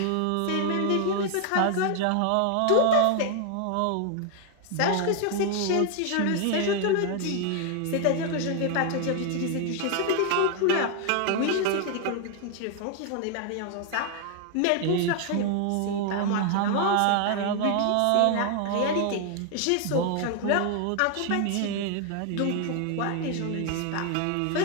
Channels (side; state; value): both; different; correlation 0.00